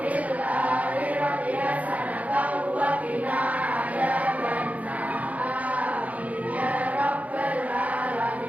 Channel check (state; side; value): late; left; 0.070 ms